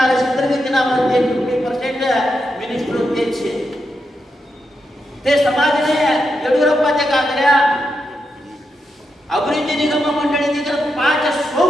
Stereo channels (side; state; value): both; normal; correlation 0.85